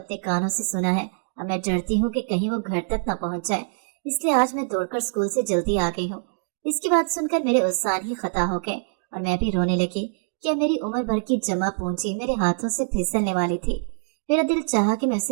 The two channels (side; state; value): left; silent; digital silence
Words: कानों से सुना है। अब मैं डरती हूँ कि कहीं वो घर तक न पहुँच जाए, इसलिए आज मैं दौड़कर स्कूल से जल्दी आ गई हूँ। इसकी बात सुनकर मेरे उत्साह ही खता हो गए और मैं भी रोने लगी। क्या मेरी उम्र भर की जमा पूंजी मेरे हाथों से फिसलने वाली थी। मेरा दिल चाहा कि मैं